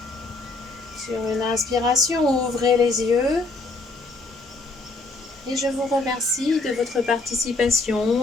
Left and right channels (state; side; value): quieter; right; 3.4 dB